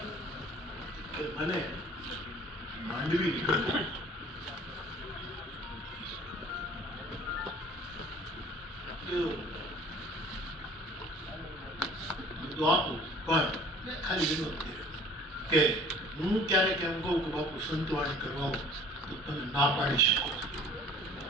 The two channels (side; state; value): both; normal; correlation 0.49